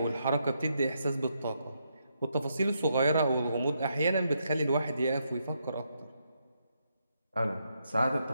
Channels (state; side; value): inverted; both; correlation -0.79